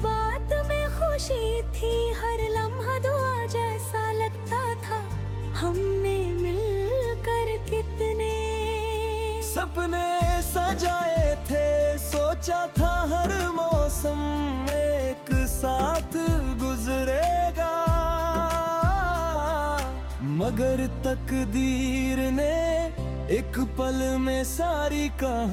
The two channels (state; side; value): identical; both; correlation 1.00